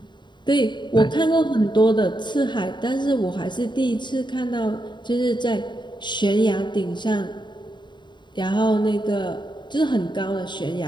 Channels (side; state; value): right; late; 0.22 ms